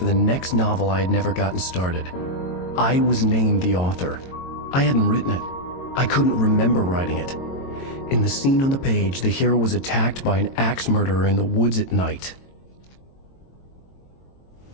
the next novel I had never gotten started. I was named the author. I hadn't written it. I couldn't remember writing it. In the scene on the page, the hero was attacked by an axe murderer in the woods at night.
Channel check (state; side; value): late; right; 22 ms